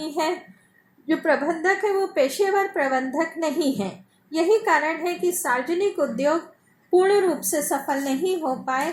है। जो प्रबंधक है वो पेशेवर प्रबंधक नहीं है। यही कारण है कि सार्वजनिक उद्योग पूर्ण रूप से सफल नहीं हो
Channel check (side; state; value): both; identical; correlation 1.00